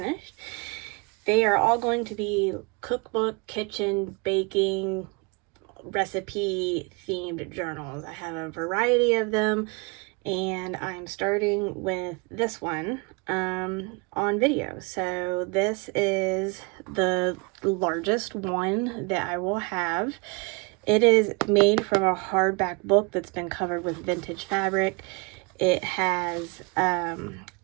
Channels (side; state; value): left; quieter; 30.7 dB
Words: They are all going to be cookbook, kitchen, baking, recipe themed journals. I have a variety of them, and I'm starting with this one on video. So this is the largest one that I will have. It is made from a hardback book that's been covered with vintage fabric. It has